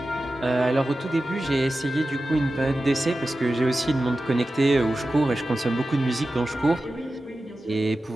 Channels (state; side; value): normal; both; correlation 0.94